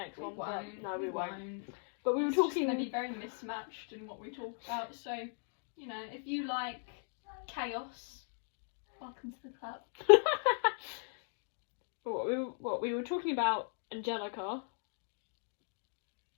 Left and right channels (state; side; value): silent; right; 53 dB below the other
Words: one. Won't. No, we won't. But But we were it's talking. going to be very mismatched in what we talk about. So, you know, if you like chaos, welcome to the club. What we were talking about Angelica,